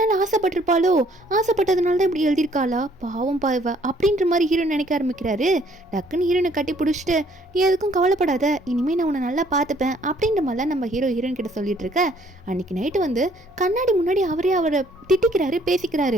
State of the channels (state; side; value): normal; both; correlation 0.62